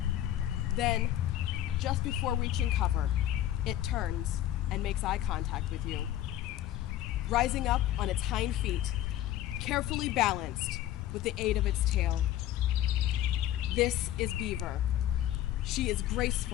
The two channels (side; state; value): right; quieter; 12.7 dB